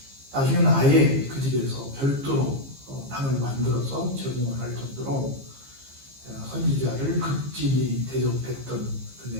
나중에는 아예 그 집에서 별도로 방을 만들어서 제공을 할 정도로 선지자를 극진히 대접했던 그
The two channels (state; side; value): late; left; 15 ms